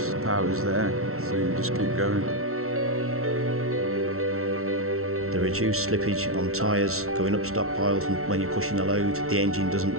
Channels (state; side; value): late; left; 0.63 ms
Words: The power's there, so you just keep going. The reduced slippage on tyres going up stockpiles and when you're pushing a load, the engine